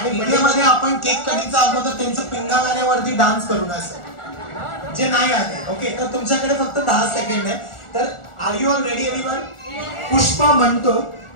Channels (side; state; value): right; late; 1.4 ms